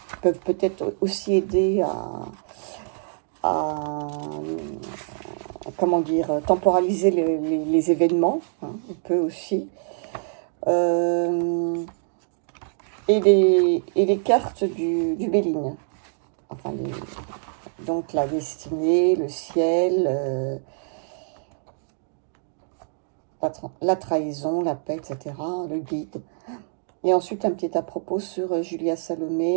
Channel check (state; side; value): silent; left; digital silence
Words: qui peuvent peut-être aussi aider à comment dire, temporaliser les événements. Hein, on peut aussi. Et les cartes du Béline. Enfin, donc, la destinée, le ciel... la trahison, la paix, etc., le guide. Et ensuite, un petit à propos sur Julia